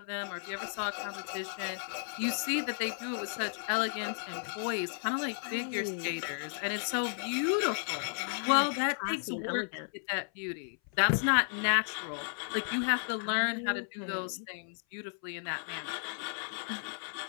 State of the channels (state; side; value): silent; right; 55 dB below the other